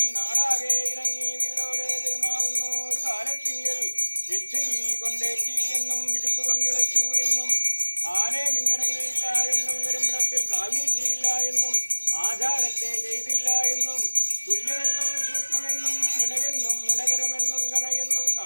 നാടാകെ ഇറങ്ങി വീടോടെ പെരുമാറുന്നു ഒരു കാലത്തിങ്കിൽ എച്ചിൽ കൊണ്ടേറ്റി എന്നും വിശുപ്പ് കൊണ്ടിളച്ചു എന്നും ആനെ മിന്നിറങ്ങിയില്ല എന്നും പെരുമ്പടത്തിൽ കാൽ നീട്ടിയില്ല എന്നും ആചാരത്തെ ചെയ്തില്ല എന്നും തുല്യമെന്നും സൂക്ഷ്മമെന്നും മുനകെന്നും മുനകരമെന്നും കണയെന്നും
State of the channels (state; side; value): inverted; both; correlation -1.00